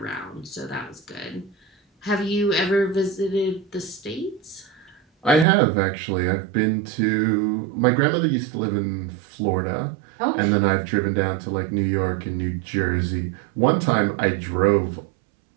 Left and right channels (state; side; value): drops out; left; at 5.5 s